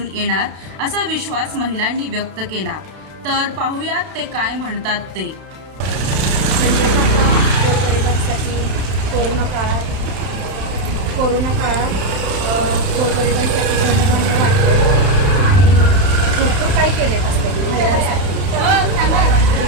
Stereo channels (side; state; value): left; late; 32 ms